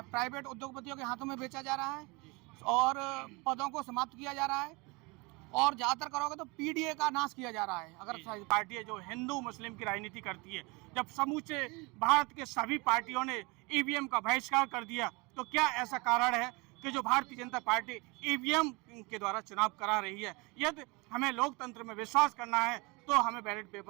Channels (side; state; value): left; quieter; 26.9 dB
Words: प्राइवेट उद्योगपतियों के हाथों में बेचा जा रहा है और पदों को समाप्त किया जा रहा है और ज़्यादातर करोगे तो पीडीए का नाश किया जा रहा है। अगर पार्टी है जो हिंदू मुस्लिम की राजनीति करती है, जब समूचे भारत के सभी पार्टियों ने ईवीएम का बहिष्कार कर दिया, तो क्या ऐसा कारण है कि जो भारतीय जनता पार्टी ईवीएम के द्वारा चुनाव करा रही है? यदि हमें लोकतंत्र में विश्वास करना है तो हमें बैलेट